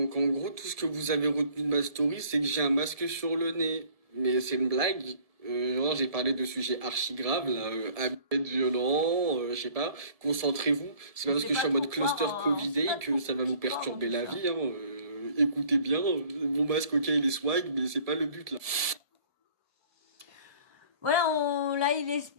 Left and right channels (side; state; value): left; late; 1.7 ms